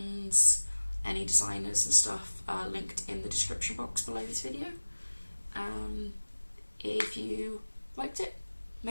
any designers and stuff linked in the description box below this video. If you liked it,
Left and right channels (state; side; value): inverted; both; correlation -1.00